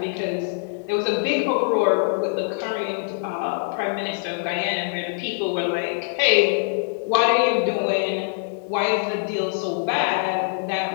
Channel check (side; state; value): right; silent; 63 dB below the other